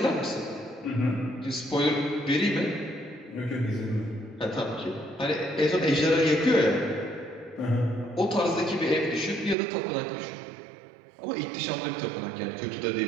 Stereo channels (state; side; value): drops out; left; at 9.6 s